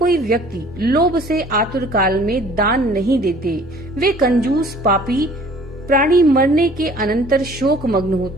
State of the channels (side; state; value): both; normal; correlation 0.52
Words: व्यक्ति लोभ से आतुर काल में दान नहीं देते, वे कंजूस पापी प्राणी मरने के अनंतर शोक मग्न